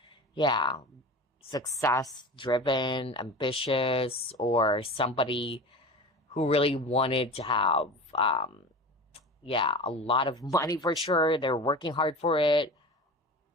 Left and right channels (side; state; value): both; normal; correlation 0.33